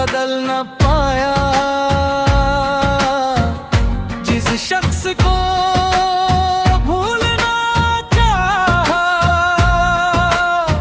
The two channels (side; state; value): both; identical; correlation 1.00